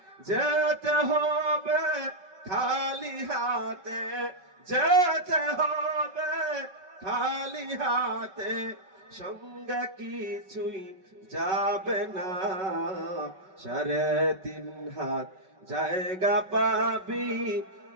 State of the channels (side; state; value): left; late; 5.3 ms